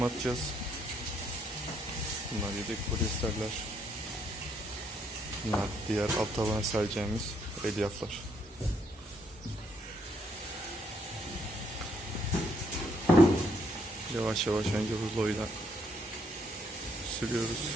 atacağız. Bunlar yedek polyesterler. Bunlar diğer alt tabana sereceğimiz elyaflar. Yavaş yavaş önce ruloyla sürüyoruz.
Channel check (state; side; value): normal; both; correlation 0.72